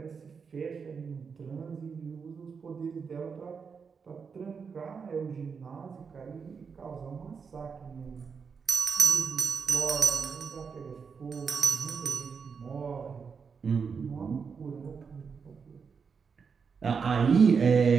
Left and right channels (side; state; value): left; quieter; 5.8 dB